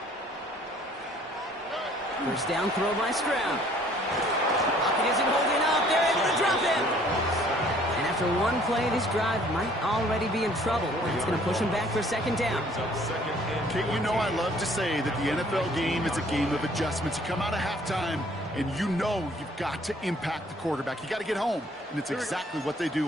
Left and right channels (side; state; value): both; normal; correlation 0.58